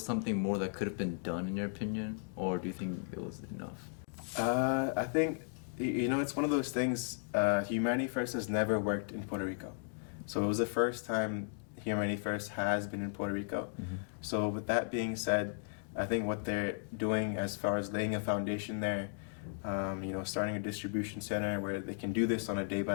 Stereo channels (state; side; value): silent; right; digital silence